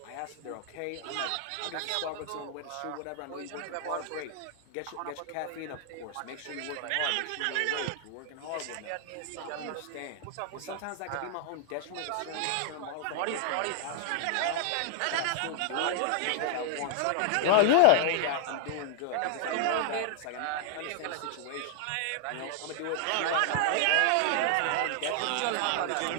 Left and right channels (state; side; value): different; both; correlation 0.00